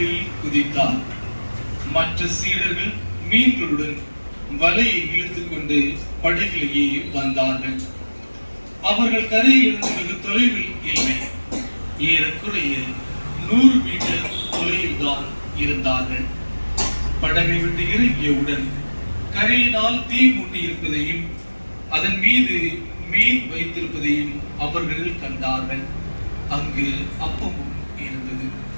குதித்தார். மற்ற சீடர்கள் மீன்களுடன் வலையை இழுத்துக் கொண்டு படகிலேயே வந்தார்கள். அவர்கள் கரையிலிருந்து வெகு தொலைவில் இல்லை. ஏறக்குறைய 100 மீட்டர் தொலைவில் தான் இருந்தார்கள். படகை விட்டு இறங்கியவுடன் கரையினால் தீ மூட்டி இருப்பதையும் அதன் மீது மீன் வைத்திருப்பதையும் அவர்கள் கண்டார்கள். அங்கு அப்பமும் இருந்தது.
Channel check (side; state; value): both; inverted; correlation -1.00